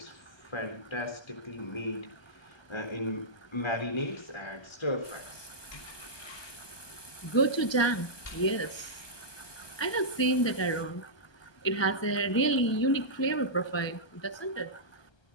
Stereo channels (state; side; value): late; right; 1.3 ms